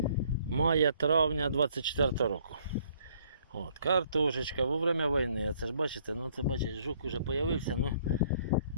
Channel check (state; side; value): inverted; both; correlation -0.63